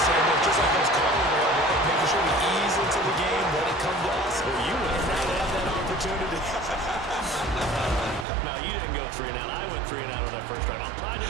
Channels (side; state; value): left; drops out; at 8.2 s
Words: same way. Just like those calling there, right? Making sure we ease into the game, let it come to us. Well, you and now they have that opportunity. No, you didn't go 3 and out. I went 3 and out on that first drive. I'm trying to